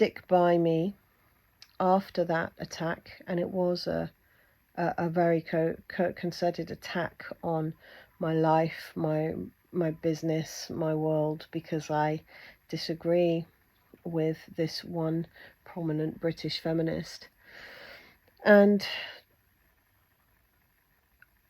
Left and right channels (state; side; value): identical; both; correlation 1.00